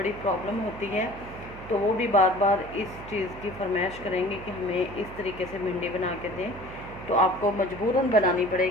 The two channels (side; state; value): right; noise; hum, 15 dB below the sound